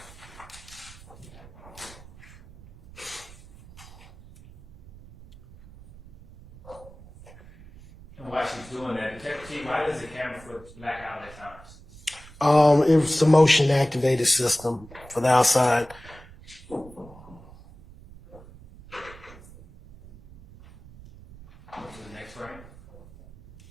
she's doing that, Detective T, why does the camera foot black out at times? It was the motion activated system for the outside. Go to the next frame.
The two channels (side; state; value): right; noise; rumble, 20 dB below the sound